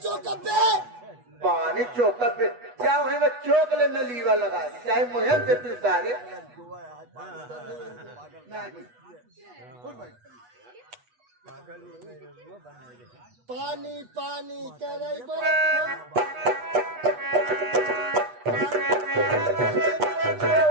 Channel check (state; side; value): late; left; 8.2 ms